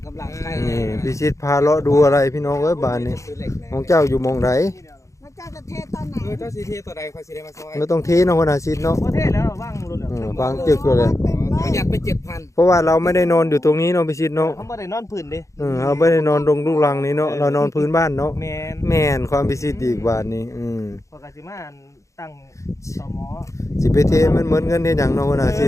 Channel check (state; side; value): late; right; 0.15 ms